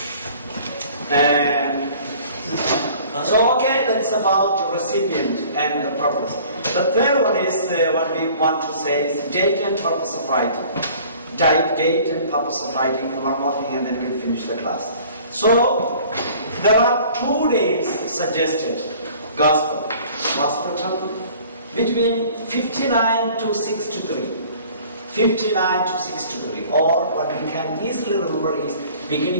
that's about the recipient and the purpose. The third one is what we want to say is date and purpose of writing. type, date, and purpose of writing, one more thing, and then we'll finish the class. So, there are 2 dates suggested. Gospel was written between 59 to 63. 59 to 63, or what we can easily remember is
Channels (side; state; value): both; inverted; correlation -0.50